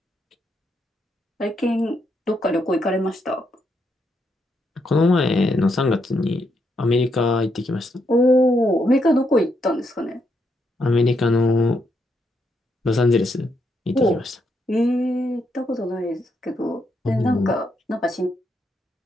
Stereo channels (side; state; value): both; normal; correlation 0.78